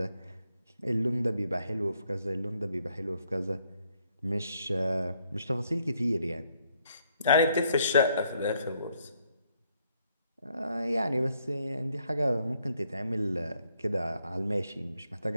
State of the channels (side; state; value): both; inverted; correlation -0.72